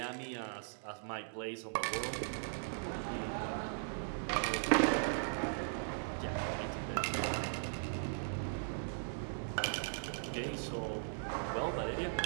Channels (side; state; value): left; silent; 52 dB below the other